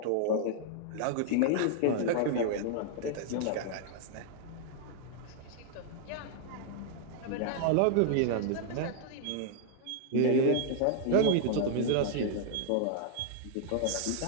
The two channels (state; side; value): different; both; correlation -0.01